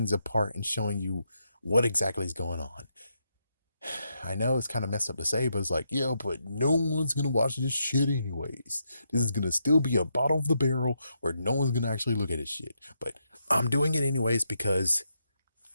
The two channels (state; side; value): inverted; both; correlation -0.81